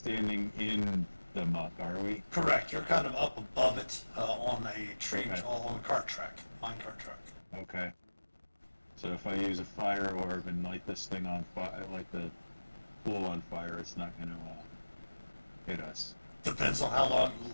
in the muck, are we? Correct. You're kind of up above it on a tree, Okay. on a cart track, mine cart track. Okay. So if I use a fire orb and light this thing on fire, light the pool on fire, it's not going to hit us. Depends on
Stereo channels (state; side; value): inverted; both; correlation -1.00